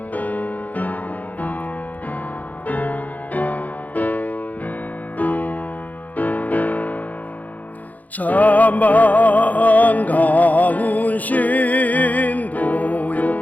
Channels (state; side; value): late; right; 0.079 ms